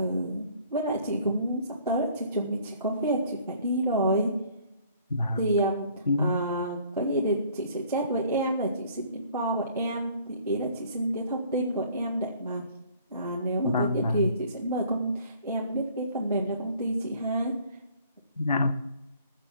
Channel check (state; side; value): inverted; both; correlation -0.56